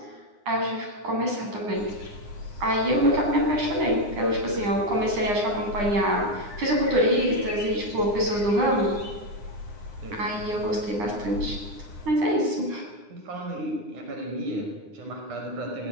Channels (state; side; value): late; left; 9.8 ms